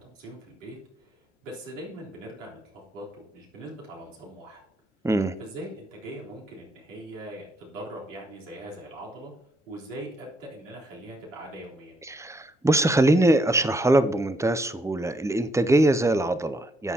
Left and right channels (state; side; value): normal; both; correlation 0.74